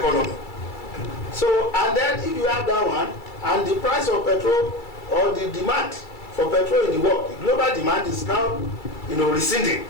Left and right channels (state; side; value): late; right; 2.3 ms